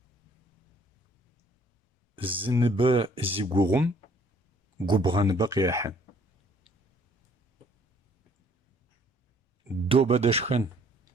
زنبا زيقوغم قبغان بقياحا دو بدشخن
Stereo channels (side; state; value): both; normal; correlation 0.60